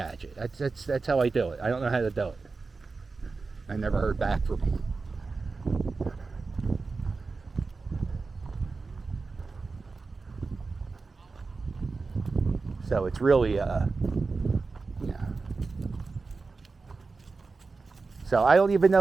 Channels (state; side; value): quieter; left; 4.1 dB